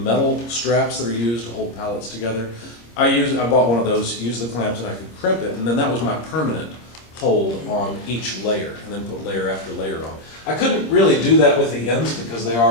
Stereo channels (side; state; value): right; late; 26 ms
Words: straps that are used to hold pallets together? I bought one of those, used the clamps, and I could crimp it, and then that was my permanent hold on each layer, and then put layer after layer on. I couldn't really do that with the ends because they